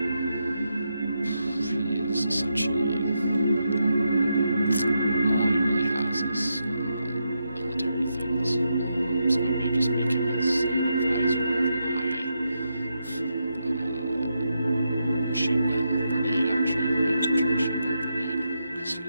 He is essentially... all he really has is military things. So I may just make him as an advisor of my machine gun brigade, actually, my infantry machine gun brigade, because he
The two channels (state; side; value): inverted; both; correlation -0.84